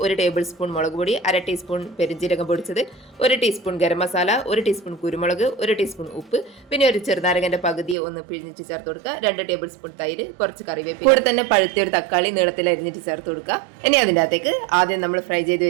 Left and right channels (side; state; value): left; drops out; at 8.0 s